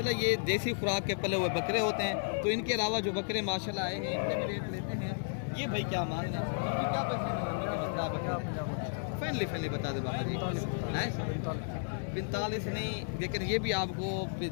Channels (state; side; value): silent; right; digital silence